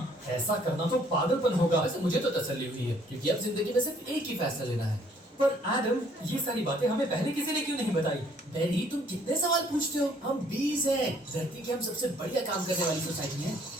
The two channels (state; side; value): normal; both; correlation 0.63